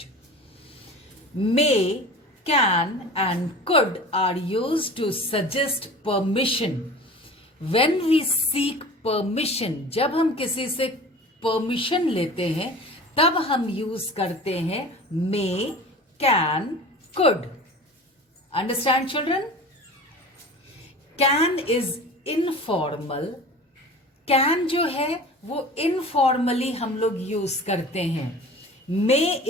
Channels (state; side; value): normal; both; correlation 0.38